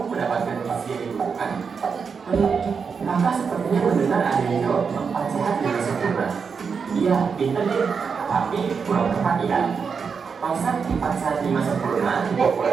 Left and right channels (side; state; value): left; quieter; 5.8 dB